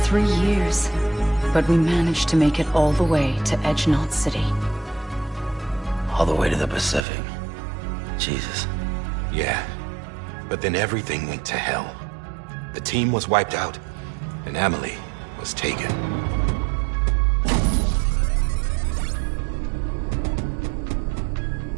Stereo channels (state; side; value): drops out; left; at 7.1 s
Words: 3 years, but we managed to make it all the way to Edge-Knot City. All the way to the Pacific. Jesus. Yeah, but then everything went to hell. The team was wiped out, and Emily was taken.